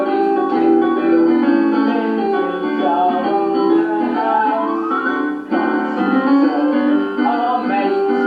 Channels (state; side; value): identical; both; correlation 1.00